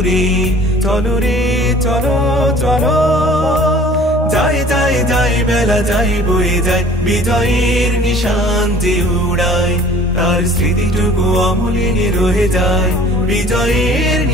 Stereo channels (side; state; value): both; normal; correlation 0.50